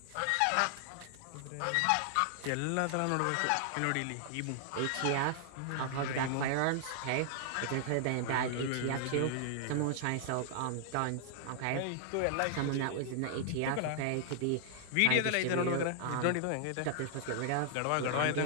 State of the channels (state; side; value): different; both; correlation -0.01